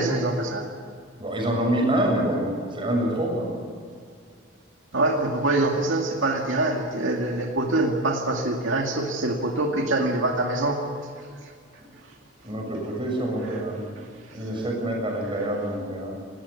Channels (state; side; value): normal; both; correlation 0.24